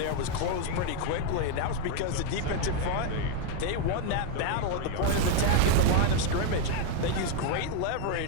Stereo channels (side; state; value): both; different; correlation 0.01